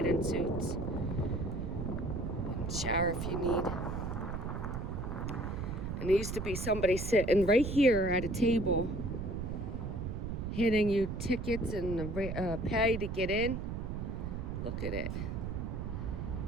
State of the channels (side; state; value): right; noise; rumble, 4 dB below the sound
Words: suits. And shower if you need. And there used to be somebody sitting right here at a table handing you tickets and pay to get in. Look at it.